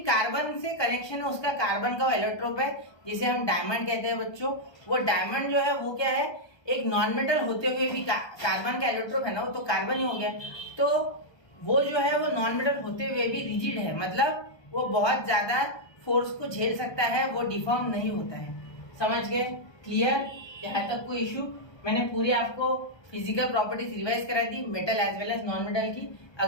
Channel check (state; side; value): late; right; 1.3 ms